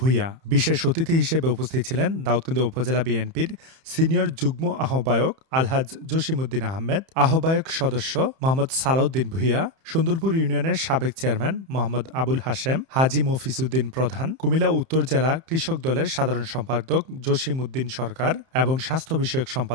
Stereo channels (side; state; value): left; late; 31 ms